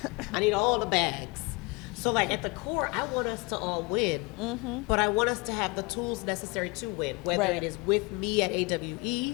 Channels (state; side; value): quieter; right; 27.8 dB